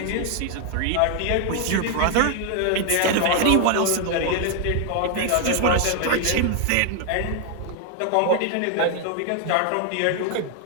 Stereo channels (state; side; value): different; both; correlation 0.00